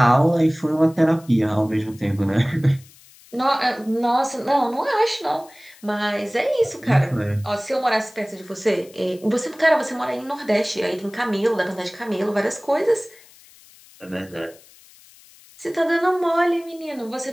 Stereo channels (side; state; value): left; noise; hiss, 25 dB below the sound